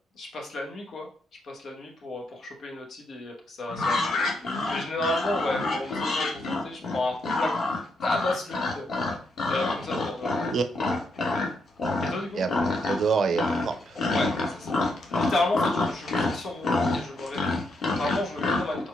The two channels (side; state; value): both; normal; correlation 0.78